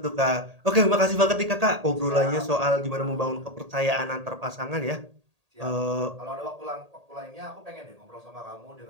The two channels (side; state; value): left; late; 1.8 ms